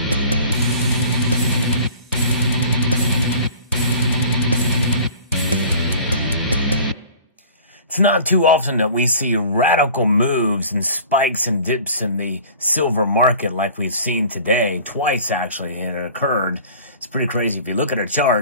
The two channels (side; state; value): both; inverted; correlation -0.45